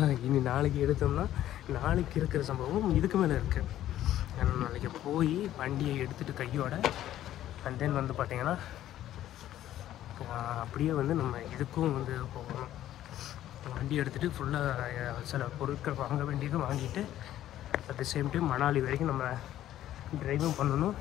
இனி நாளைக்கு எடுத்தோம்னா நாளைக்கு இருக்கிற சம்பவம் இதுக்கு மேலே இருக்குது. ஏன்னா நாளைக்கு போய் வண்டியை எடுத்துகிட்டு கையோட அண்ட் தென் வந்து பார்த்திங்கன்னா அப்படியே வந்து நம்ம இதுக்கும் வந்து போகணும். வண்டி எடுத்துகிட்டு ஃபுல்லாக சில பொருட்கள் வாங்க வேண்டியது வாங்கிட்டு at the same time Manali வரைக்கும் நம்ம ட்ரைவும் பண்ணணும்.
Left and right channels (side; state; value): right; quieter; 12.7 dB